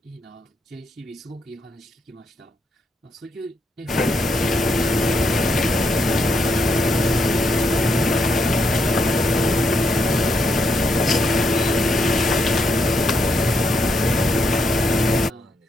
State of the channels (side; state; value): both; normal; correlation 0.78